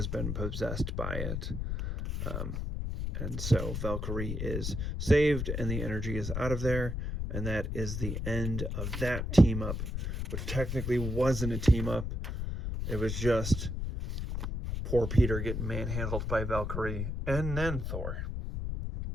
been possessed by it. And so Valkyrie is saved, and the energy is out of there. And that is the end of that team up, which technically wasn't a team up. It was just poor Peter getting manhandled by Valkyrie and then Thor.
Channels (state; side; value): noise; left; rumble, 3 dB below the sound